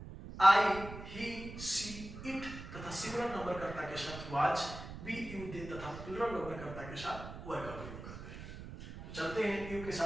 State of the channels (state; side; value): noise; right; rumble, 11 dB below the sound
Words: आई, ही, सी, इट तथा सिंगुलर नंबर कर्ता के साथ वाज, बी, यू, दे तथा प्लूरल नंबर कर्ता के साथ वर का प्रयोग करते हैं। तो चलते हैं, यू के